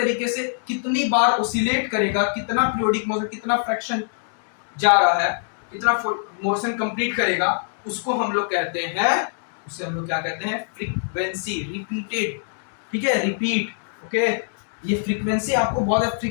से कितनी बार ऑसिलेट करेगा, कितना पीरियोडिक मोशन, कितना फ्रैक्शन जा रहा है, कितना मोशन कंप्लीट करेगा, उसको हम लोग कहते हैं, उसे हम लोग क्या कहते हैं, फ्रीक्वेंसी, रिपीटेड, ठीक है, रिपीट, ओके। ये फ्रीक्वेंसी आपको बहुत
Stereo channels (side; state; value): right; silent; digital silence